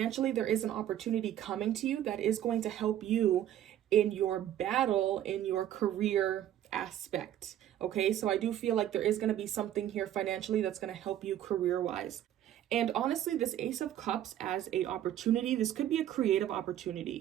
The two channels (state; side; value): quieter; left; 11.5 dB